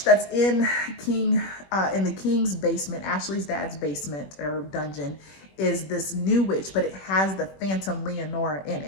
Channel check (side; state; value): right; late; 21 ms